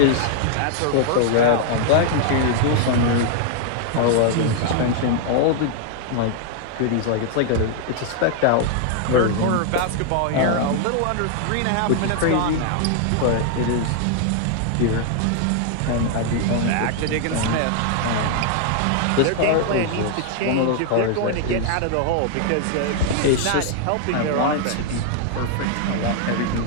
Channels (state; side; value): different; both; correlation 0.00